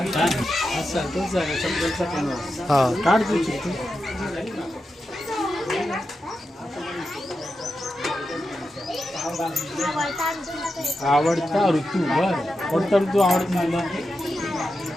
काढ तू चिठ्ठी. आवडता ऋतू. बर कोणता ऋतू आवडतो मला?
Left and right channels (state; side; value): normal; both; correlation 0.89